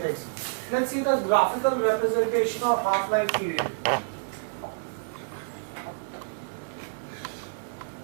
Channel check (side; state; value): left; silent; digital silence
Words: Let's see the graphical representation of half-life period.